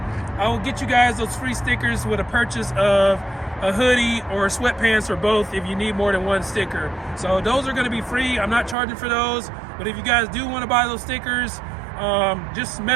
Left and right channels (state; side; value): drops out; left; at 8.8 s